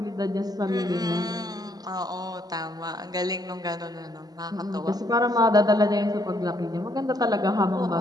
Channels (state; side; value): late; left; 0.19 ms